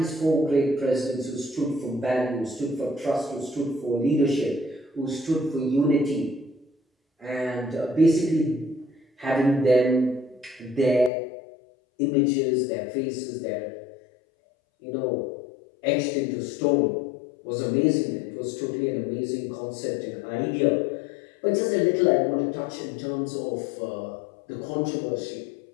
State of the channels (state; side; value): drops out; right; at 11.1 s